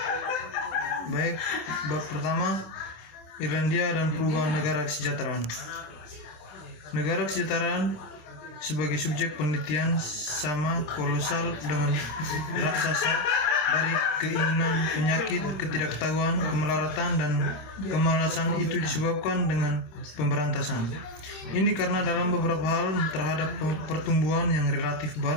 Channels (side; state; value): right; late; 27 ms